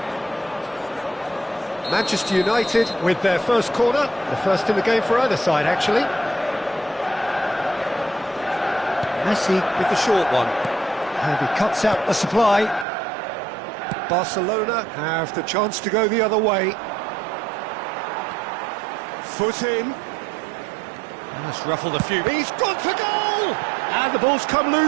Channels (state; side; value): drops out; left; at 12.9 s